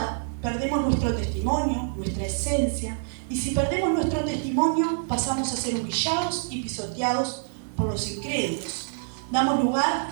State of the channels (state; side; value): silent; left; 61 dB below the other